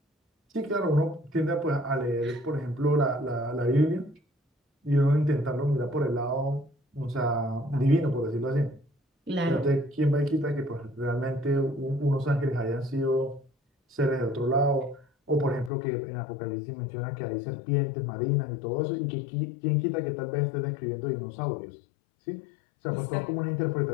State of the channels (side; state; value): right; drops out; at 15.7 s